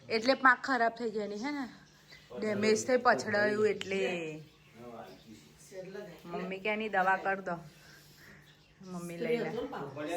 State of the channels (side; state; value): both; identical; correlation 1.00